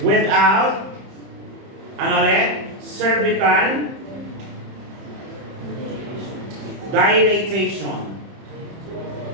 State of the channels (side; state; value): left; late; 30 ms